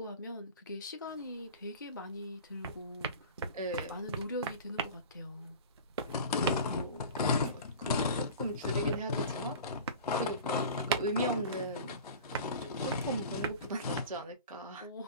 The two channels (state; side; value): inverted; both; correlation -0.37